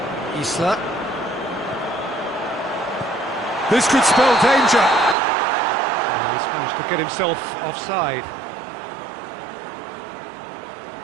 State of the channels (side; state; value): left; drops out; at 5.2 s